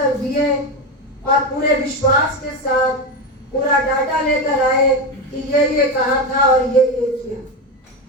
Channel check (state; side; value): normal; both; correlation 0.15